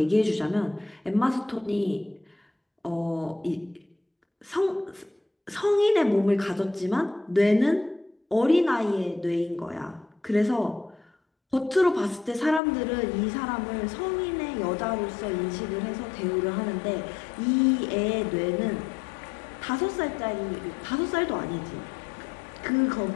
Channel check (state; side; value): drops out; right; at 12.6 s